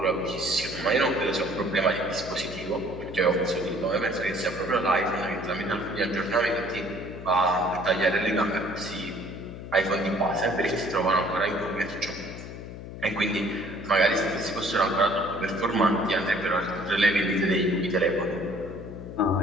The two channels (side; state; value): left; noise; hum, 11 dB below the sound